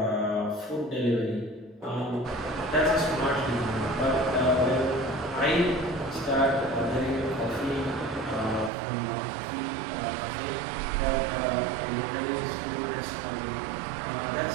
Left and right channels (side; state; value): left; drops out; at 8.7 s